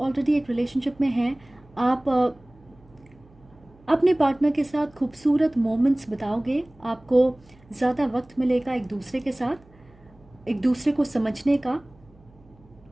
एक रिलेशनशिप में हैं, आप अपने पार्टनर के साथ खूबसूरत मोमेंट्स बिताओगे। आपको ज़्यादा वक्त मिलेगा एक दूसरे के साथ, एक दूसरे को समझने का।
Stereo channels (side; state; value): right; noise; hum, 28 dB below the sound